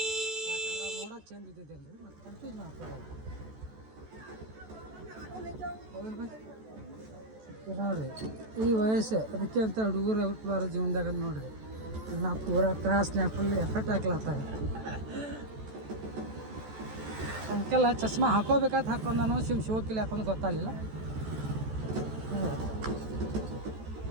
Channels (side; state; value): left; late; 14 ms